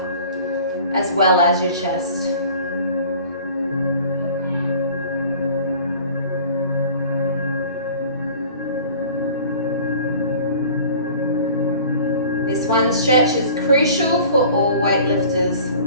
as well as your chest. This one stretch is crucial for all weightlifters,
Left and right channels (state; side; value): inverted; both; correlation -0.46